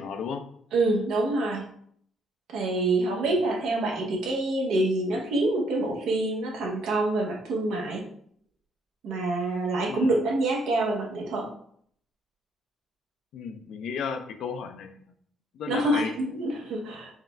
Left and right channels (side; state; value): both; normal; correlation 0.68